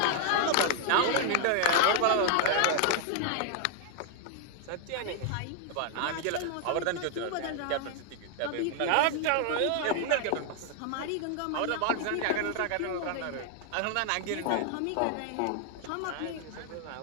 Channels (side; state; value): both; different; correlation 0.00